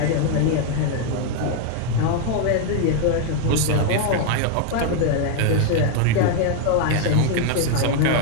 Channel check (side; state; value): both; different; correlation 0.01